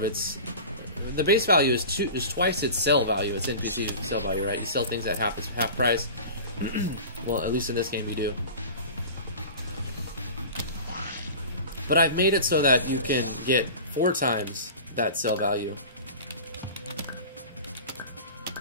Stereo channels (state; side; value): inverted; both; correlation -0.36